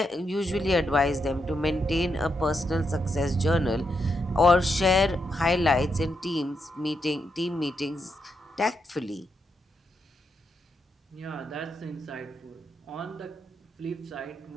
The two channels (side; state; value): both; normal; correlation 0.82